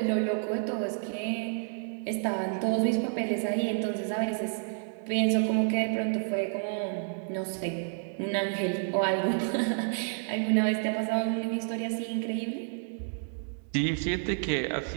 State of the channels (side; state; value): left; silent; digital silence